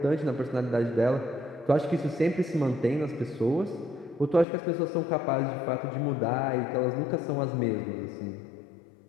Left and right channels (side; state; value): right; drops out; at 4.5 s